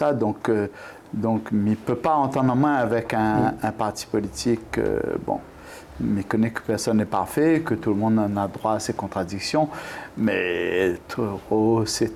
Donc, il ne peut pas entendre en main avec un parti politique. Bon. Mais connaît que personne n'est parfait, que tout le monde en a droit à ses contradictions, mais trop, c'est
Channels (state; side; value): identical; both; correlation 1.00